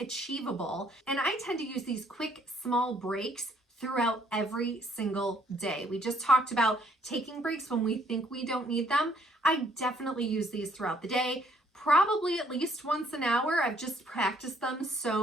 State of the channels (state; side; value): normal; both; correlation 0.65